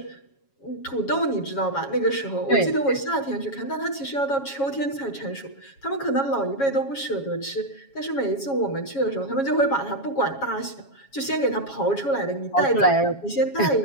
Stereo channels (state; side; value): late; right; 7.3 ms